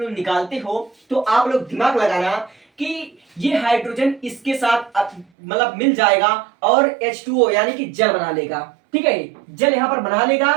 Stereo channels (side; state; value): left; drops out; at 5.2 s